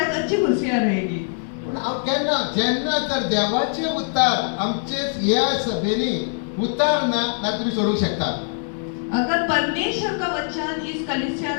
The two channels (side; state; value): right; silent; digital silence